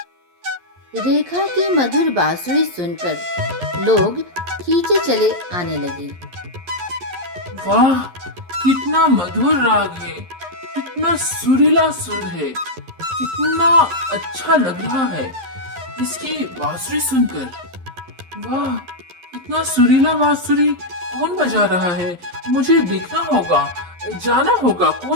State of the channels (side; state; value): left; late; 11 ms